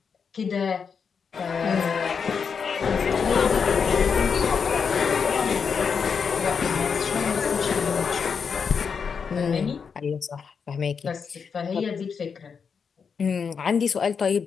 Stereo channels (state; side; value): quieter; right; 6.1 dB